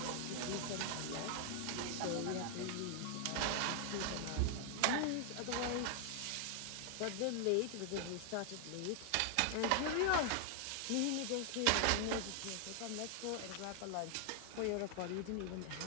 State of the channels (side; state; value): both; different; correlation 0.00